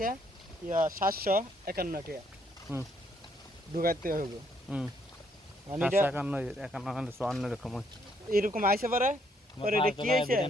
751 টাকা ঢুকাইতে হবে মানে এটা 51 এরকম এরকম আইছে পরে পরে এটা কি হয়েছে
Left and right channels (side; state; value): both; normal; correlation 0.70